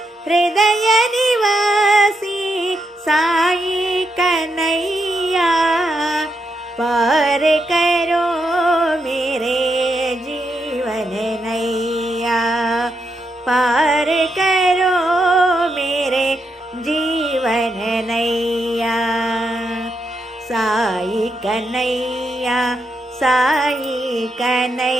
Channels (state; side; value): normal; both; correlation 0.82